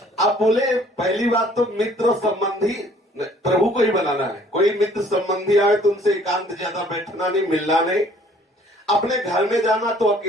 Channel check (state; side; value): normal; both; correlation 0.57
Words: आप बोले पहली बात तो मित्र संबंधी प्रभु को ही बनाना है। कोई मित्र संबंधी आए तो उनसे एकांत ज्यादा बैठना नहीं, मिलना नहीं। अपने घर में जाना तो